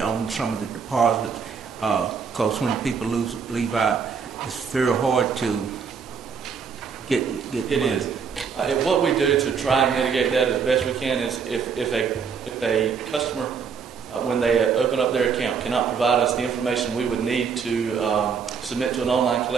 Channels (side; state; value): left; quieter; 6.2 dB